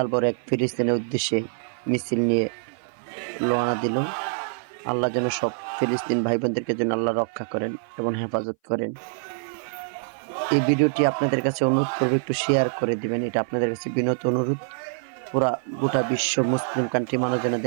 বড় এক ফিলিস্তিনের উদ্দেশ্যে মিছিল নিয়ে রওনা দিল। আল্লাহ যেন সব ফিলিস্তিন ভাই বোনদেরকে যেন আল্লাহ রক্ষা করেন এবং হেফাজত করেন। এই ভিডিওটি আপনাদের কাছে অনুরোধ করবো, একটু শেয়ার করে দিবেন, এটা আপনাদের কাছে বিনত অনুরোধ। পুরা গোটা বিশ্ব মুসলিম কান্ট্রি মানুষ যেন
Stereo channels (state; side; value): silent; left; 58 dB below the other